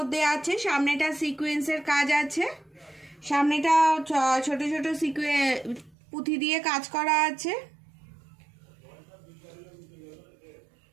আছে, সামনেটা সিকোয়েন্সের কাজ আছে, সামনেটা ছোট ছোট পুঁথি দিয়ে কাজ করা আছে।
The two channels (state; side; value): drops out; left; at 6.0 s